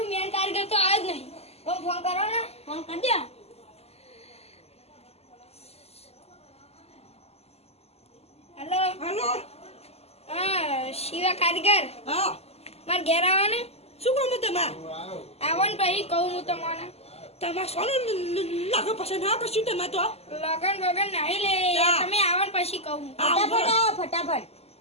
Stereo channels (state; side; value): late; right; 0.30 ms